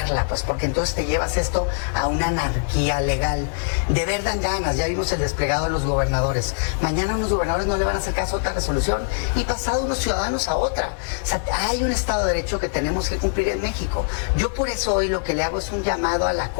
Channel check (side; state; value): right; silent; digital silence